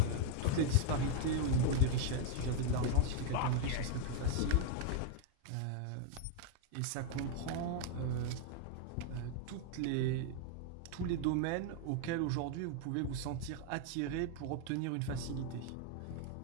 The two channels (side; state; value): both; different; correlation 0.00